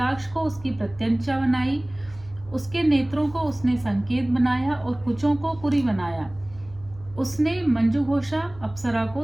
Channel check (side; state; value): right; noise; hum, 20 dB below the sound